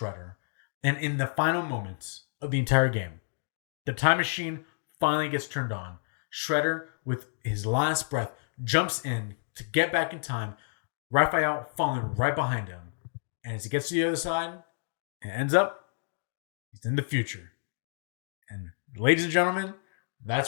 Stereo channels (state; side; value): silent; right; digital silence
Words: And in the final moments of the entire game, the time machine finally gets turned on. Shredder, with his last breath, jumps in to get back in time. Raphael falling right behind him. And as he gets to the other side, it ends up, he's in the future. And ladies and gentlemen, that's